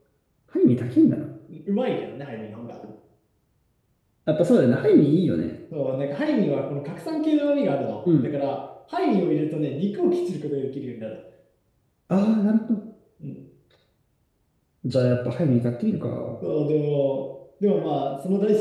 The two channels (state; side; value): identical; both; correlation 1.00